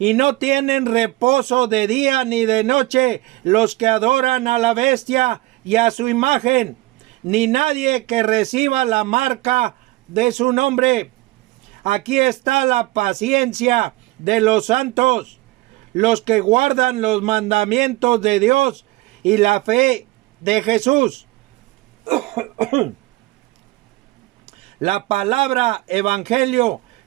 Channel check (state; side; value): quieter; left; 20.4 dB